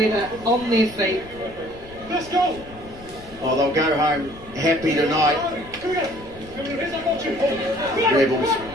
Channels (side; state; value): left; noise; rumble, 19 dB below the sound